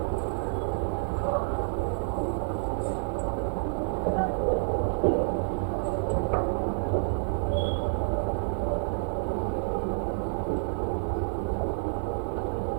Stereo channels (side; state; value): left; silent; digital silence